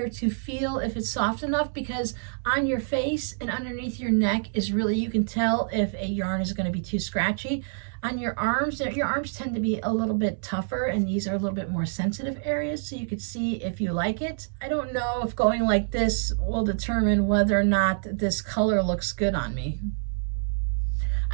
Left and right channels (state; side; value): silent; left; 60 dB below the other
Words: to feel if it's soft enough, because on your face and underneath your neck is really, you can tell if a yarn is going to be too scratchy. On your arms tend to be a little bit tougher, and these are a little bit more sensitive areas, so you could see if you like it. I don't know if going like this will determine whether or not this color looks good on me.